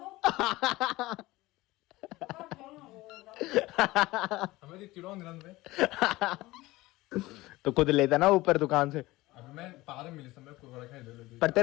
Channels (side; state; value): right; quieter; 19.2 dB